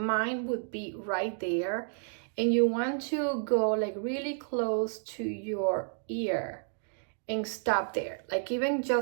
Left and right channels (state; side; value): silent; left; digital silence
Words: would be right there, and you want to go like really close to your ear and stop there, like even